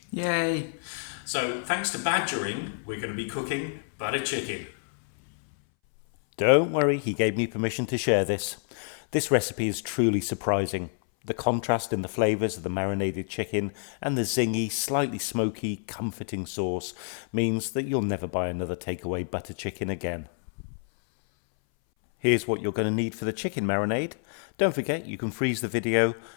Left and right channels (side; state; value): right; silent; 59 dB below the other